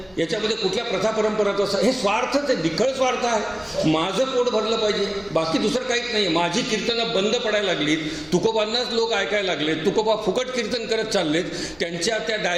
याच्यामध्ये कुठल्या प्रथा परंपराचा, हे स्वार्थच आहे, निखळ स्वार्थ आहे. माझं पोट भरलं पाहिजे, बाकी दुसरं काहीच नाही. माझी कीर्तनं बंद पडायला लागलीत, तुकोबांनाच लोक ऐकायला लागलेत, तुकोबा फुकट कीर्तन करत चाललेत, त्यांच्या त्या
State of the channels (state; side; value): noise; left; hum, 28 dB below the sound